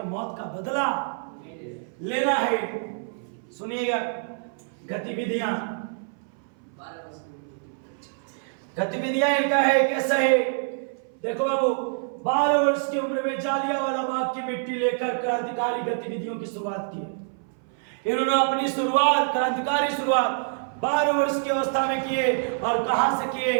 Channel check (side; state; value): left; silent; 58 dB below the other